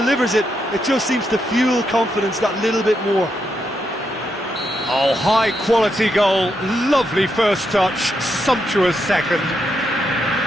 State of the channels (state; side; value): normal; both; correlation 0.81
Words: it, it just seems to fuel confidence that little bit more. Oh, high-quality goal. Lovely first touch, sumptuous second.